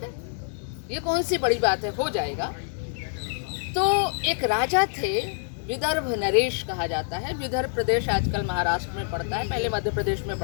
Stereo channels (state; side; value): silent; right; digital silence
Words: है, ये कौन सी बड़ी बात है, हो जाएगा। तो एक राजा थे, विदर्भ नरेश कहा जाता है। विदर्भ प्रदेश आजकल महाराष्ट्र में पड़ता है, पहले मध्य प्रदेश में